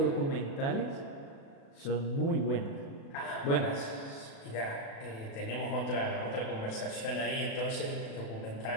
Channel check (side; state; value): right; late; 36 ms